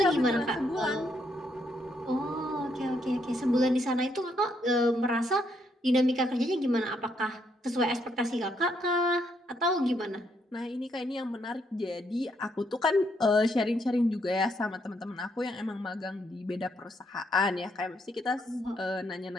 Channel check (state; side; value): normal; both; correlation 0.74